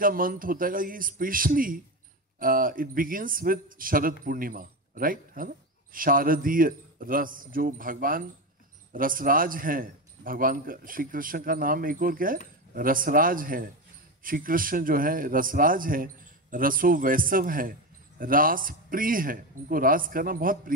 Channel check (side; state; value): both; normal; correlation 0.18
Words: मंथ होता है ये specially it begins with Sharad Purnima, right, है ना. शारदीय रस, जो भगवान रसराज हैं, भगवान का, श्री कृष्ण का नाम एक और क्या है, रसराज है. श्री कृष्ण जो है रसराज है, रसो वैसव है, रास प्रिय है, उनको रास करना बहुत